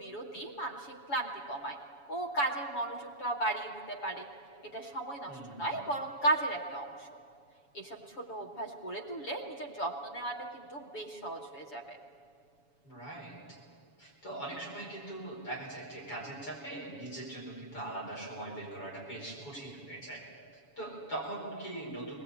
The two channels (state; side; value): late; right; 7.1 ms